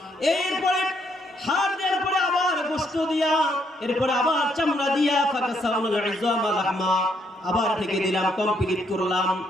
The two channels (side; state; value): both; normal; correlation 0.72